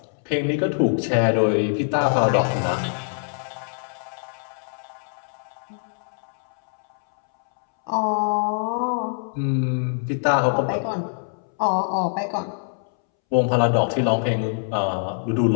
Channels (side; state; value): right; silent; 63 dB below the other